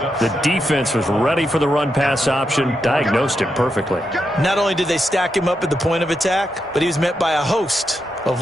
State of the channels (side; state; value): both; normal; correlation 0.84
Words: The defense was ready for the run-pass option, diagnosed it perfectly. Not only did they stack him up at the point of attack, but he was met by a host of